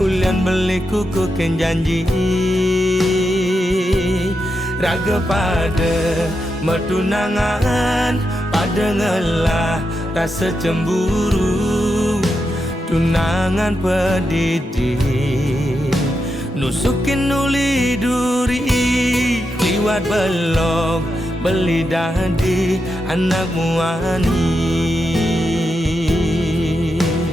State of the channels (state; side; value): normal; both; correlation 0.86